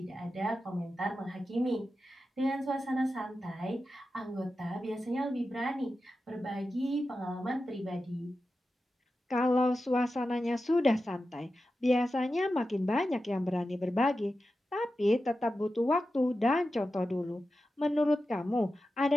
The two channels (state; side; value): normal; both; correlation 0.91